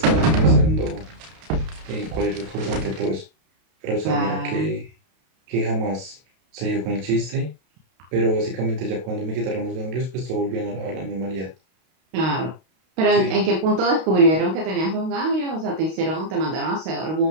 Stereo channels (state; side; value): late; left; 32 ms